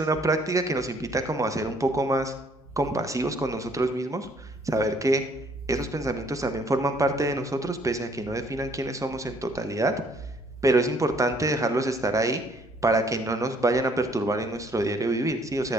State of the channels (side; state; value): both; normal; correlation 0.63